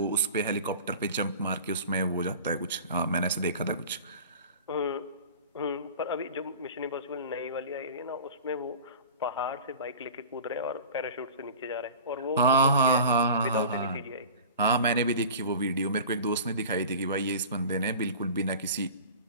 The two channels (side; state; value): both; inverted; correlation -0.38